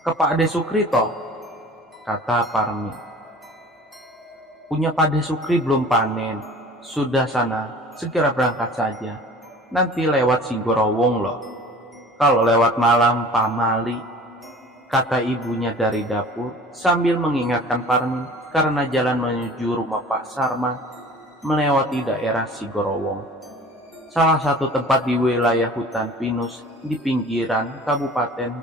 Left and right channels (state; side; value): normal; both; correlation 0.44